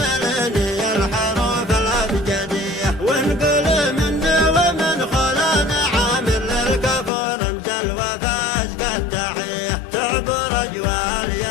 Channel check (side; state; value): right; drops out; at 7.1 s